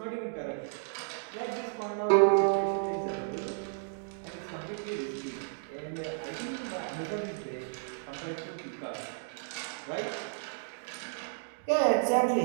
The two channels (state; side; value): silent; left; digital silence